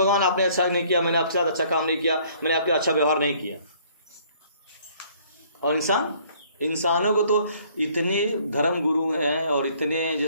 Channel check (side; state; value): both; inverted; correlation -0.60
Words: आपने अच्छा नहीं किया, मैंने आपके साथ अच्छा काम नहीं किया, मैंने आपके अच्छा व्यवहार नहीं किया। और इंसानों को तो इतने धर्म गुरु हैं और इतने